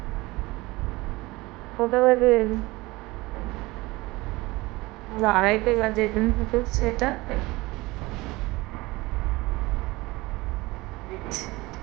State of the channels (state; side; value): quieter; left; 21.3 dB